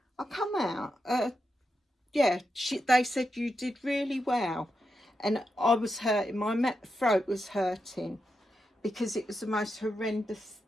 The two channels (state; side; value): normal; both; correlation 0.86